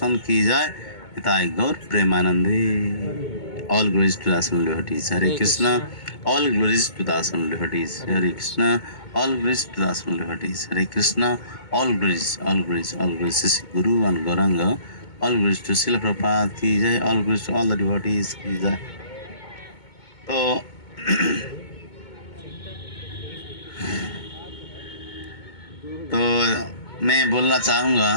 की जय, हिताय गौर प्रेमानंदे। ऑल ग्लोरीज टू दासन devotees, Hare Krishna. All glories to दासन devotees, Hare Krishna. All glories to दासन devotees, Hare Krishna. All glories, all glories, all glories Shri guru and Gauranga. All glories to Srila Prabhupada की जय, all glories to all the devotees की जय। तो मैं बोलना चाहूँगा,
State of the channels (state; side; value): late; right; 2.2 ms